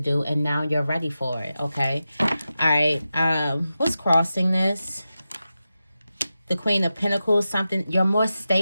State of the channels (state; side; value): inverted; both; correlation -0.92